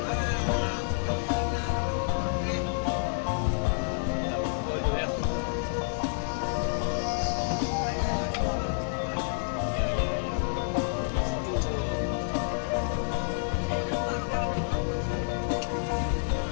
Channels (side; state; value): right; silent; digital silence